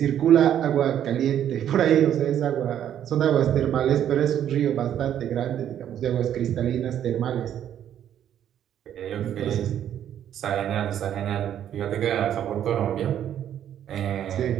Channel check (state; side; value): quieter; left; 10.3 dB